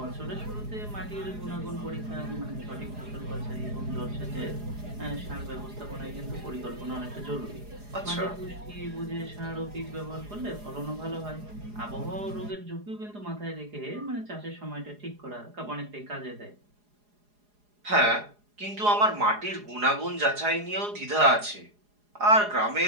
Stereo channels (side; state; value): left; late; 4.8 ms